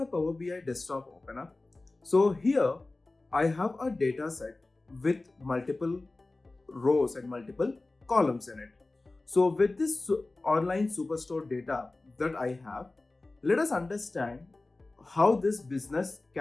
Power BI desktop open up. So here I have a data set with multiple rows and multiple columns in it. So with this online superstore data that I have, let us understand how this business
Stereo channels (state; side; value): quieter; right; 3.1 dB